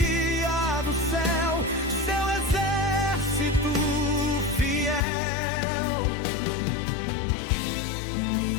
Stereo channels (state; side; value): drops out; right; at 5.0 s